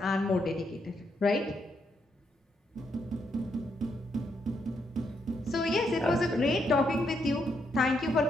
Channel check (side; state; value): both; normal; correlation 0.78